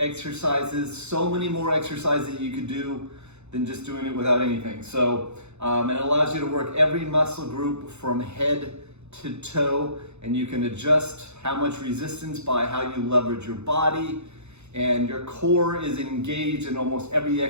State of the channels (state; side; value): late; left; 0.81 ms